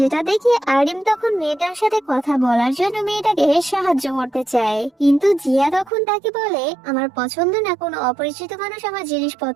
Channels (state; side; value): drops out; left; at 5.9 s